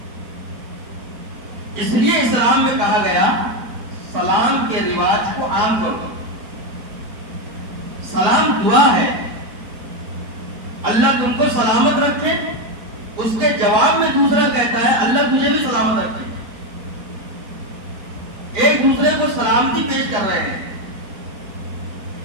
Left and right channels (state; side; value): late; left; 4.5 ms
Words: اس لیے اسلام میں کہا گیا سلام کے رواج کو عام کرو. سلام دعا ہے، اللہ تم کو سلامت رکھے. اس کے جواب میں دوسرا کہتا ہے اللہ تجھے بھی سلامت رکھے. ایک دوسرے کو سلامتی پیش کر رہے ہیں.